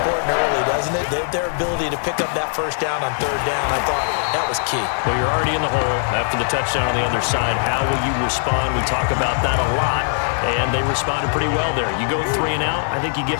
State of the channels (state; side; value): silent; right; 66 dB below the other